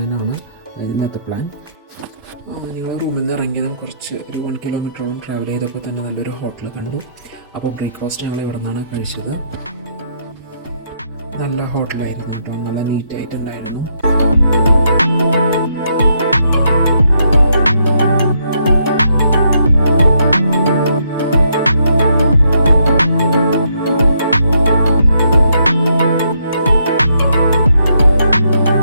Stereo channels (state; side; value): inverted; both; correlation -0.75